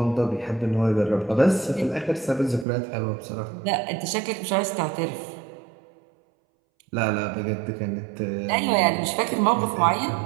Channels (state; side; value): drops out; left; at 2.7 s